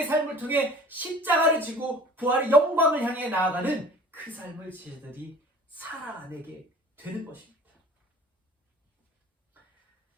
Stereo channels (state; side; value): normal; both; correlation 0.45